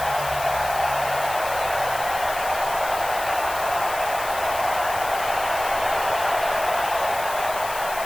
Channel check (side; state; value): left; noise; hiss, 11 dB below the sound